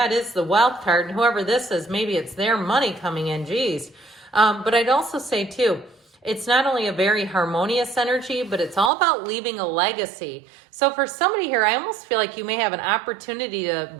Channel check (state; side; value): drops out; left; at 8.9 s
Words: it is the wealth card. And whoever this is, maybe it's their money coming in, geez. But I'd also say, too, it's not only a very harmonious energy, but it's all about leaving a legacy. So for somebody here, I almost feel like you may have an opportunity to